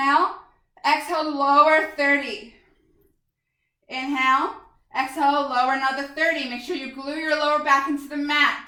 Exhale, lower 30. Inhale. Exhale, lower another 30. Make sure you glue your lower back into the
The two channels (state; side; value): identical; both; correlation 1.00